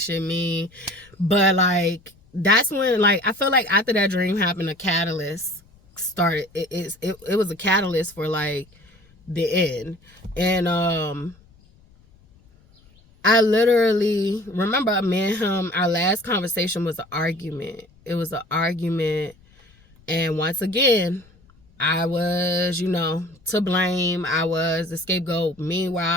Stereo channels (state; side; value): noise; left; rumble, 29 dB below the sound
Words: shit mean. But, like, that's when, like, I feel like after that dream happened, a catalyst started. It was a catalyst for, like, the end. And I literally remember me and him, our last conversation was an argument. It was an argument. And once again, I was, to blame. I was the scapegoat.